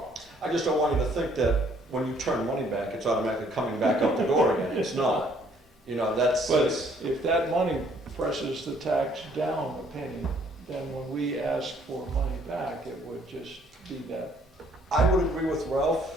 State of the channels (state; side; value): normal; both; correlation 0.63